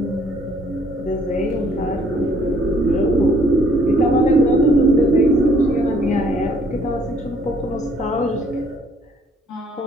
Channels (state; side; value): normal; both; correlation 0.63